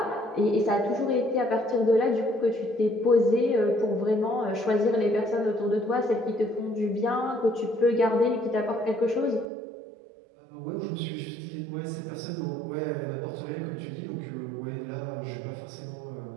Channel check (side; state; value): left; drops out; at 9.5 s